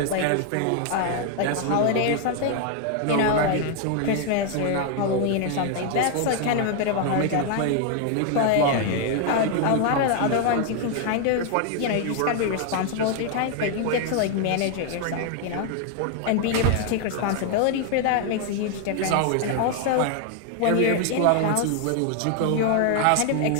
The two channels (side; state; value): both; different; correlation 0.00